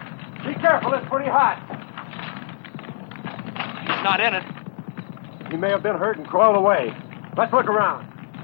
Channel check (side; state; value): right; silent; digital silence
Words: Be careful, it's pretty hot. He's not in it. He may have been hurt and crawled away. Let's look around.